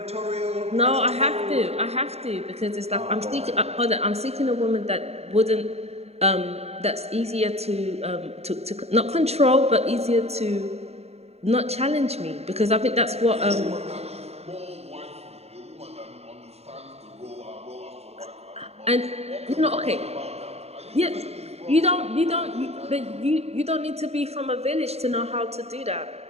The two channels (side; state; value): left; late; 0.30 ms